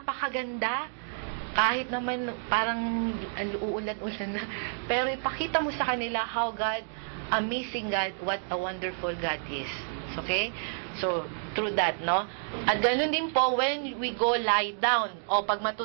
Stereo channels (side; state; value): left; silent; digital silence